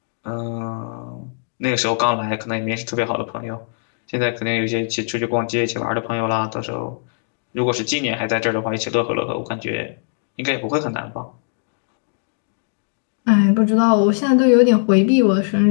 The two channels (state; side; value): silent; right; digital silence